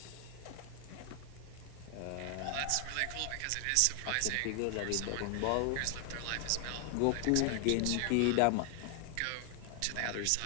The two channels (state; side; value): different; both; correlation 0.00